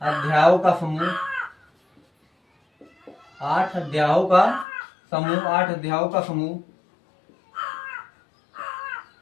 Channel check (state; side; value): drops out; right; at 4.7 s